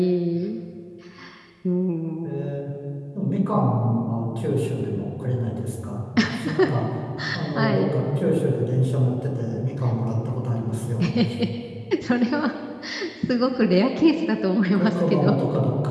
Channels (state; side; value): identical; both; correlation 1.00